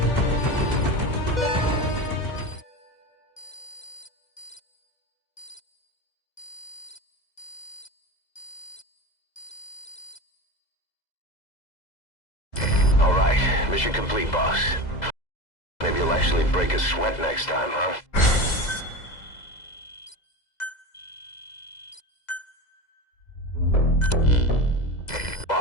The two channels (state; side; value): late; right; 2.0 ms